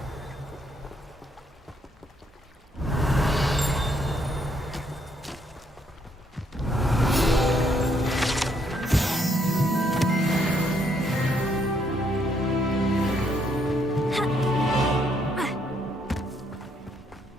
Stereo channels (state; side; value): normal; both; correlation 0.72